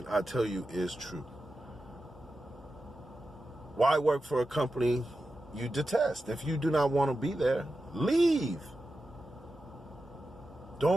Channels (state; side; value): normal; both; correlation 0.91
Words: I tell you, is true. Why work for a company you detest? If you do not want to be there, leave.